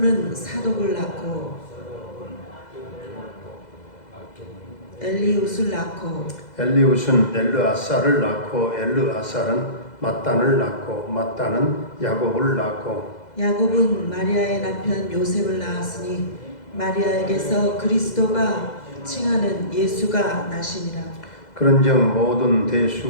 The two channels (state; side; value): late; right; 2.0 ms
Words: 사독을 낳고 엘리웃을 낳고 엘리웃은 엘르아사를 낳고 엘르아사는 mat단을 낳고 mat단은 야곱을 낳고 야곱은 마리아의 남편 요셉을 낳았으니 마리아에게서 그리스도가 칭하는 예수가 나시니라. 그런즉 모든